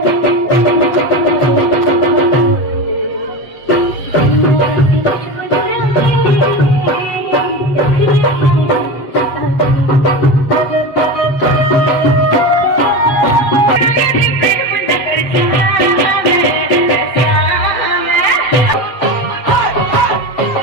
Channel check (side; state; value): right; late; 7.8 ms